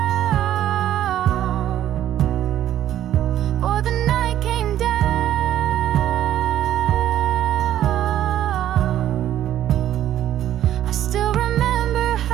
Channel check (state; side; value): quieter; left; 11.9 dB